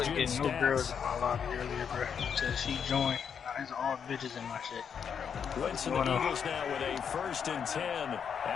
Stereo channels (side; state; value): right; quieter; 7.3 dB